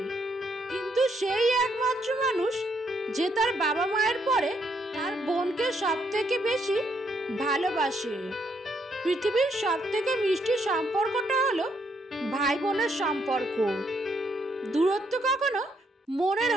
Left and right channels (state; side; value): normal; both; correlation 0.73